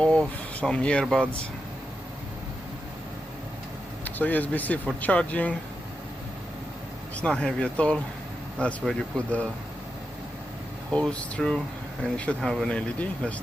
some earbuds. So USB-C for charging. It's not heavy at all. That's where you put the hose through, and you should have an LED. Let's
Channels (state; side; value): normal; both; correlation 0.88